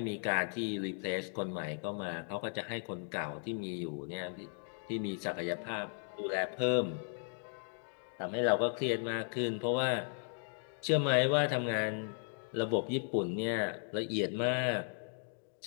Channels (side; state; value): right; silent; 54 dB below the other